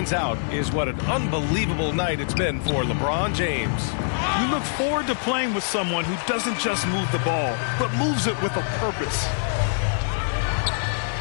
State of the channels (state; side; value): silent; right; digital silence